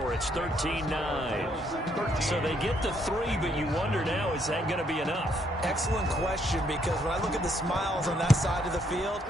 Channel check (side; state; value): both; normal; correlation 0.71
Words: It's 13-9. So they get the 3, but you wonder now, is that going to be enough? Excellent question, because when I look at the smiles on that side of the field,